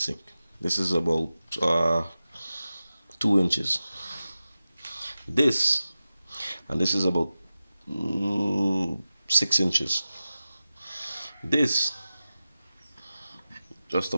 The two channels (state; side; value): inverted; both; correlation -0.94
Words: This is about 2 inches. This is about 6 inches. This just